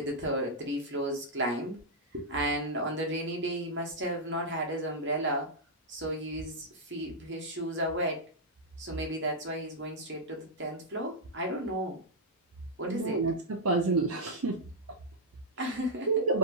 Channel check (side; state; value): both; normal; correlation -0.06